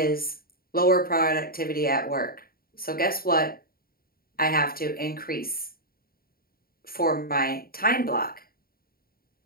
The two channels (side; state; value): right; late; 0.43 ms